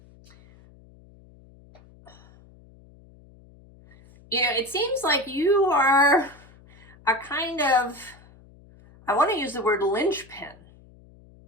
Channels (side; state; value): left; noise; hum, 25 dB below the sound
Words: You know, it seems like you are a kind of, I want to use the word linchpin.